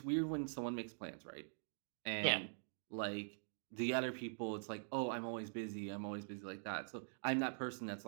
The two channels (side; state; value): left; silent; digital silence